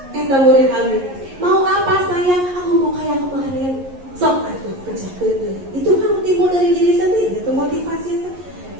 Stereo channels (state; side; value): late; left; 11 ms